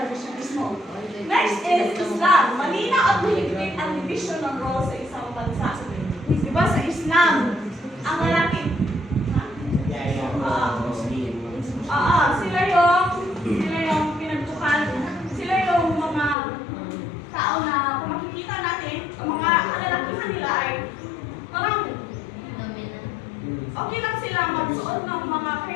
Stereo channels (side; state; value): right; drops out; at 16.4 s